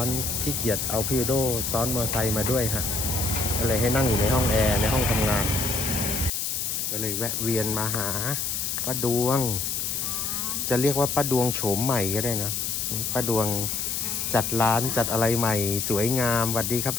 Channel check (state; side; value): noise; left; hiss, 1 dB below the sound